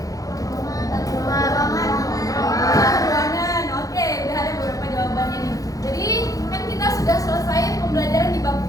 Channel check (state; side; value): late; right; 0.17 ms